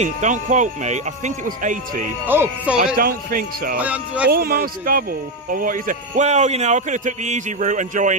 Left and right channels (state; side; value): normal; both; correlation 0.08